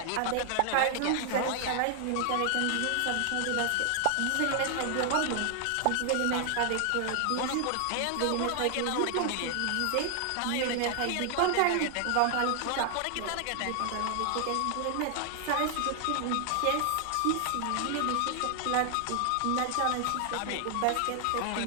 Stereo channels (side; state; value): both; different; correlation 0.00